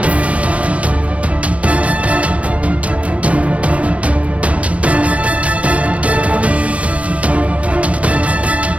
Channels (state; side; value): late; left; 0.065 ms